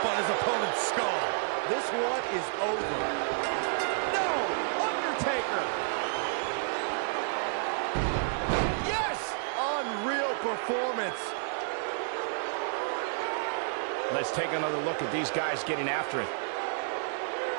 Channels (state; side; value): silent; left; digital silence